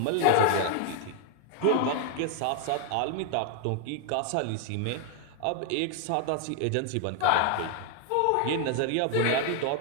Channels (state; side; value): different; both; correlation 0.00